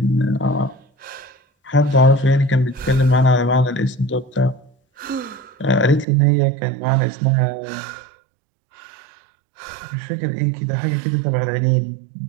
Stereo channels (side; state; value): left; drops out; at 6.1 s